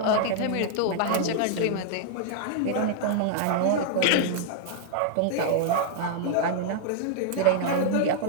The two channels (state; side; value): different; both; correlation 0.00